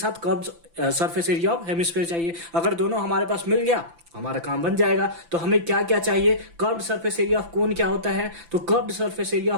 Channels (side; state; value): left; late; 5.9 ms